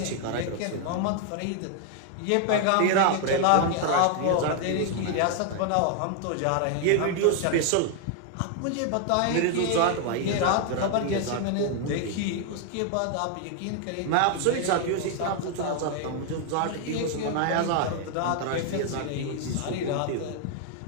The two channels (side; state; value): both; different; correlation 0.00